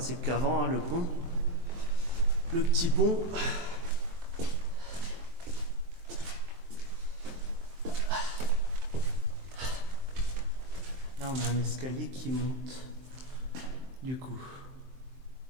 qu'avant, hein, le pont. Le petit pont. Là, on a un escalier qui monte. Du coup,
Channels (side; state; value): left; late; 23 ms